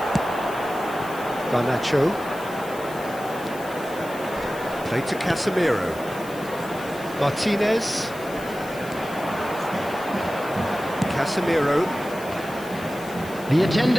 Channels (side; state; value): left; noise; hiss, 18 dB below the sound